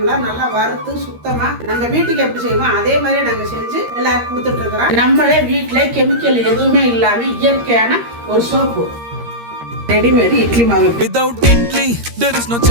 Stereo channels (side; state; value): left; late; 13 ms